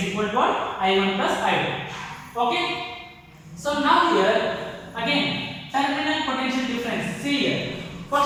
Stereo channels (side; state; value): both; identical; correlation 1.00